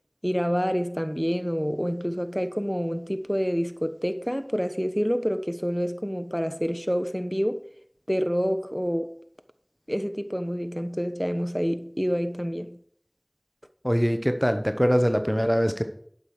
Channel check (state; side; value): identical; both; correlation 1.00